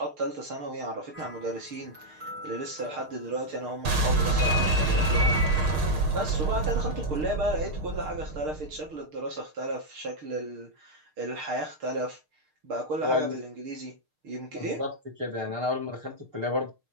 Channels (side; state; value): left; late; 6.6 ms